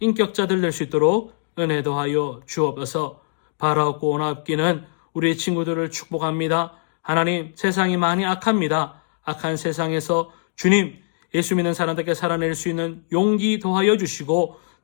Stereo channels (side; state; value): right; silent; digital silence